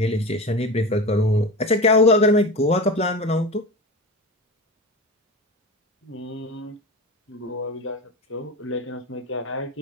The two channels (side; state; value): both; normal; correlation 0.29